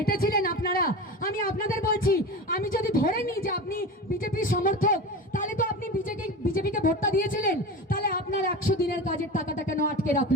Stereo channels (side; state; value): both; normal; correlation 0.28